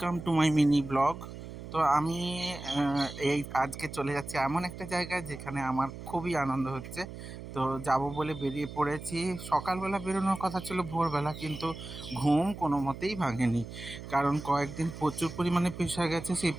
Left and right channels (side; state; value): right; noise; hum, 11 dB below the sound